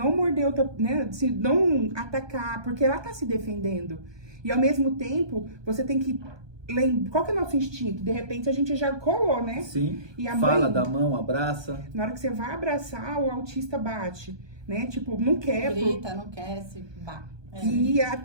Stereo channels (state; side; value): late; left; 1.2 ms